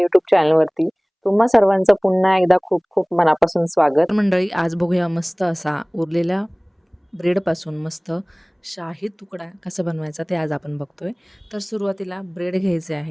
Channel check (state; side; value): identical; both; correlation 1.00